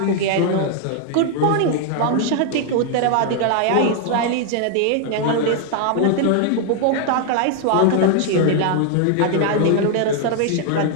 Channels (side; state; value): both; different; correlation 0.00